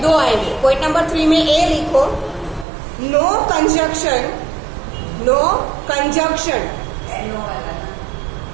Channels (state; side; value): drops out; left; at 2.7 s